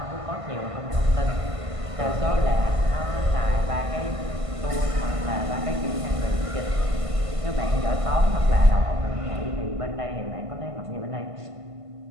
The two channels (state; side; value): late; left; 1.5 ms